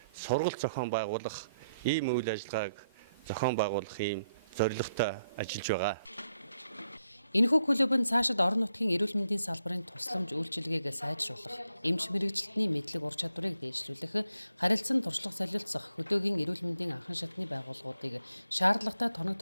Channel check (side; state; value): both; inverted; correlation -0.78